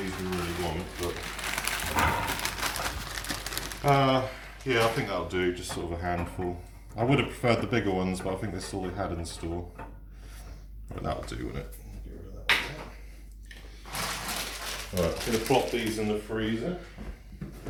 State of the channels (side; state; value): both; identical; correlation 1.00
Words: we really want, but yeah, I think that'll do, just sort of a handful. I would have preferred the bigger ones, but I think that's all they had in the store. Right, that'll do, won't it? Get rid of that one. Right, I'm going to plop these in the freezer.